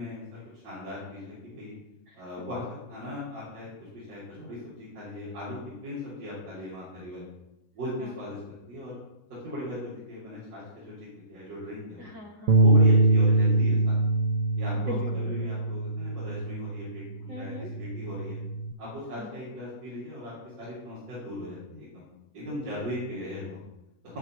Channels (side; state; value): left; late; 6.8 ms